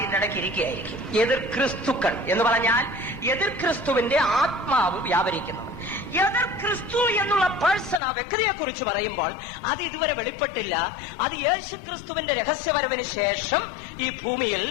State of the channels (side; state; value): right; drops out; at 8.0 s